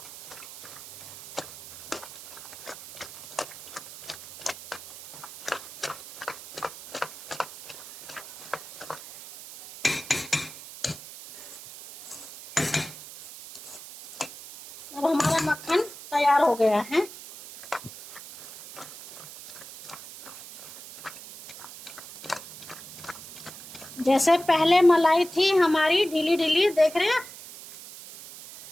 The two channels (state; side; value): noise; right; hiss, 15 dB below the sound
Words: अब हमारा मक्खन तैयार हो गया है। जैसे पहले मलाई थी हमारी ढीली ढीली, देख रहे हैं